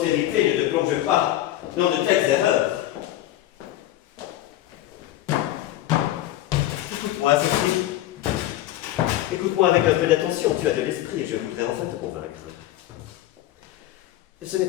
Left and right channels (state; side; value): quieter; right; 14.1 dB